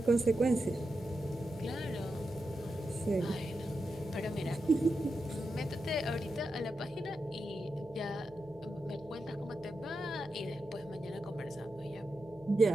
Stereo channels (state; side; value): noise; left; hum, 21 dB below the sound